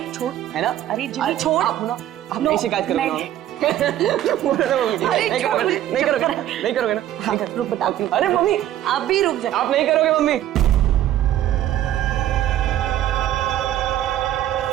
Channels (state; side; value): quieter; left; 12.4 dB